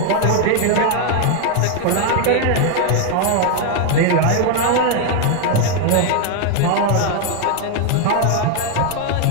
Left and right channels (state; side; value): different; both; correlation 0.00